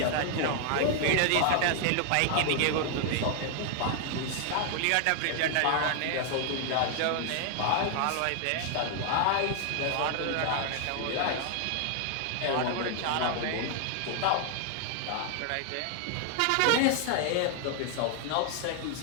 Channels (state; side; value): different; both; correlation 0.00